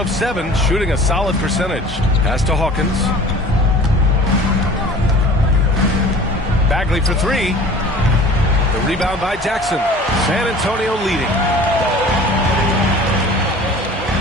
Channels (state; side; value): normal; both; correlation 0.44